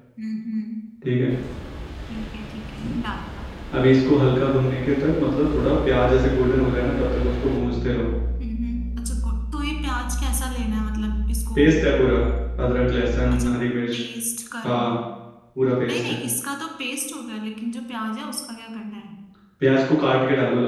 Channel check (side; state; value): both; identical; correlation 1.00